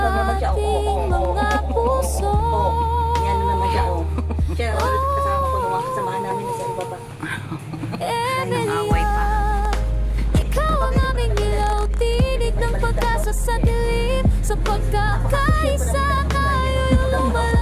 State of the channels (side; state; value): both; identical; correlation 1.00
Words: naman siya, oh. ating mga puso. Ayan na naman siya, oh. Siya, kasama ko nung kasamahan namin sa ibaba. away pa. Ikaw ang aming ilaw, tinig ng pag-asa sa dilim. Sa pagkakaisa tayo yung